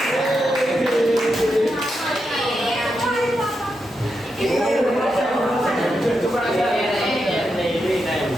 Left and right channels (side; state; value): both; normal; correlation 0.85